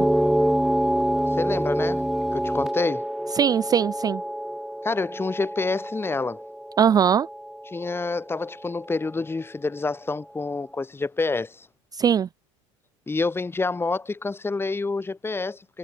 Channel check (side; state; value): both; normal; correlation 0.77